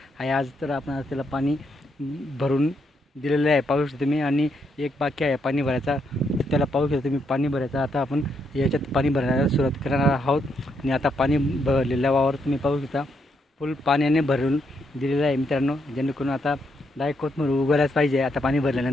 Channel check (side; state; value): both; normal; correlation 0.77